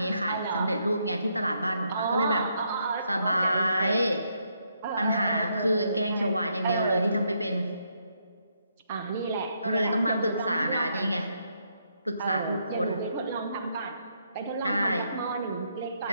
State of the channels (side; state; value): both; inverted; correlation -0.76